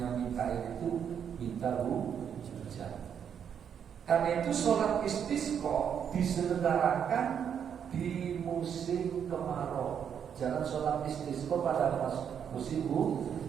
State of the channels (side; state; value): left; quieter; 8.1 dB